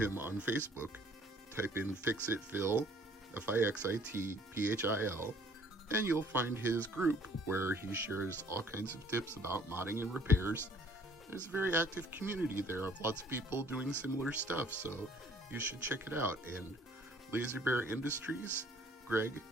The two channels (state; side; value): normal; both; correlation 0.57